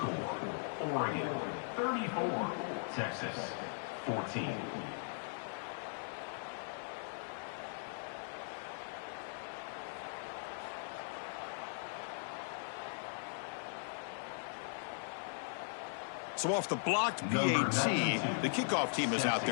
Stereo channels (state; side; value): silent; right; digital silence